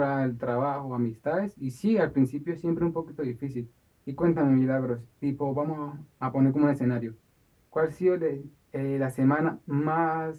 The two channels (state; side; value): identical; both; correlation 1.00